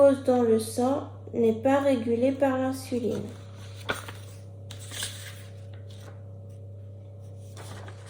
dans le sang n'est pas régulé par l'insuline.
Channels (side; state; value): both; identical; correlation 1.00